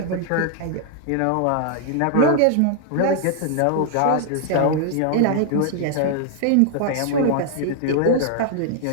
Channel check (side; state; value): both; different; correlation 0.00